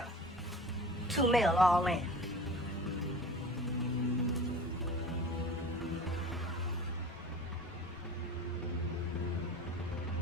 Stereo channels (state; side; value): normal; both; correlation 0.38